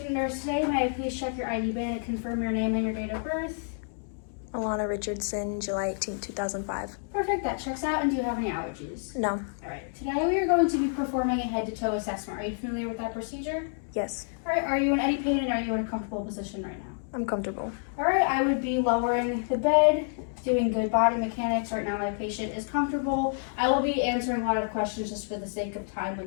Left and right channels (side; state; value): right; silent; digital silence